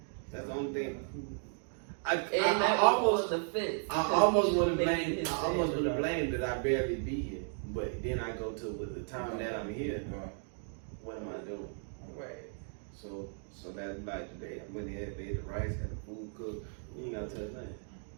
That's the only thing. I almost on the fence. I almost want to blame that I barely be here. But then I go to with the time that I'm here, what am I doing? Right. So that's like today. I went there, made the rice, had the food cooked. You ain't gotta touch nothing.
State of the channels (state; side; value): silent; left; 54 dB below the other